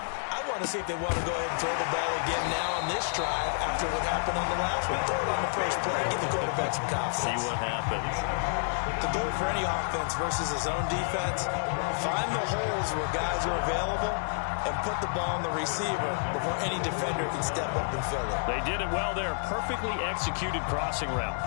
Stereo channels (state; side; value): silent; right; digital silence